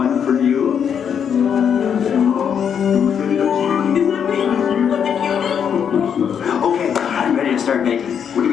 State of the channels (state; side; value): quieter; right; 7.8 dB